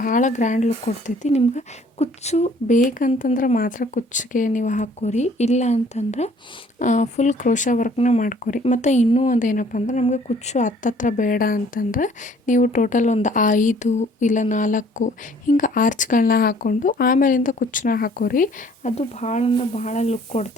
ಗ್ರ್ಯಾಂಡ್ ಲುಕ್ ಕೊಡ್ತೈತಿ. ನಿಮ್ಗೆ ಕುಚ್ಚು ಬೇಕಂತಂದ್ರೆ ಮಾತ್ರ ಕುಚ್ಚಿಗೆ ನೀವು ಹಾಕ್ಕೋರಿ, ಇಲ್ಲ ಅಂತಂದ್ರೆ ಫುಲ್ ಕ್ರೋಶ ವರ್ಕ್ನ ಮಾಡ್ಕೊರಿ. ಮತ್ತು ಇನ್ನೂ ಒಂದು ಏನಪ್ಪ ಅಂದ್ರೆ ನಮಗೆ ಕುಚ್ಚು ಹತ್ತತ್ರ ಬೇಡ ಅಂತಂದ್ರೆ ನೀವು ಟೋಟಲ್ ಒಂದು 5 ಇಲ್ಲ 4 ಹಿಂಗೆ ಆರ್ಚ್ಗಳನ್ನ ಹಾಕ್ಕೊಂಡು ಆಮೇಲಿಂದ ಕುಚ್ಚನ್ನ ಹಾಕೋರಿ. ಅದು ಭಾಳ ಲುಕ್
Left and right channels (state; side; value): normal; both; correlation 0.57